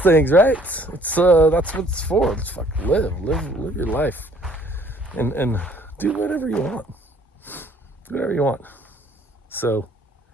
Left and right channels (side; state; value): both; normal; correlation 0.59